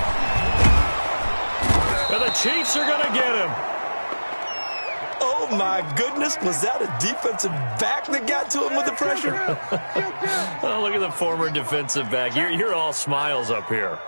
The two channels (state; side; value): inverted; both; correlation -1.00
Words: And the Chiefs are going to get him. Oh, my goodness. Was that a defensive back that got to him with the pressure? Oh, look at the former defensive back. You're all smiles up here.